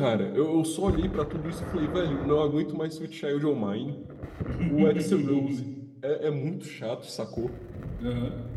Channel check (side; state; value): both; identical; correlation 1.00